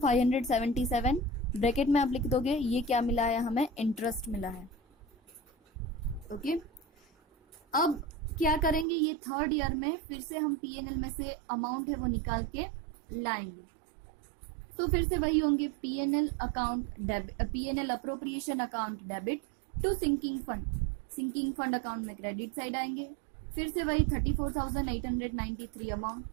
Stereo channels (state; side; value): drops out; left; at 8.8 s